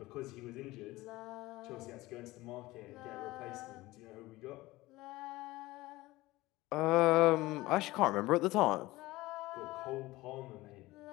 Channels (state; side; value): quieter; right; 19.1 dB